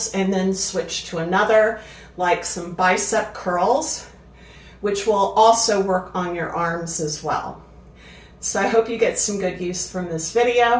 and then switch to another, like some bicep curls, which will also work on your arms as well. So I hope you get some good use from this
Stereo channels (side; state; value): both; identical; correlation 1.00